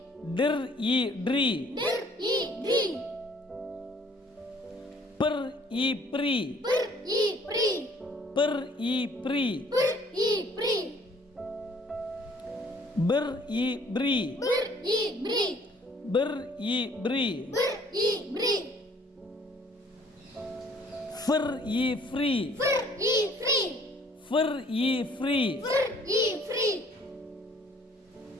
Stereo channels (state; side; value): normal; both; correlation 0.58